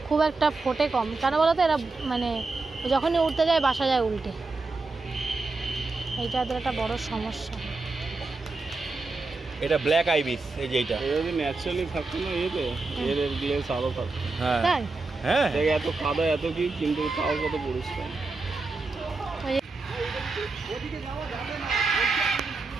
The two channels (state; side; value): quieter; left; 3.6 dB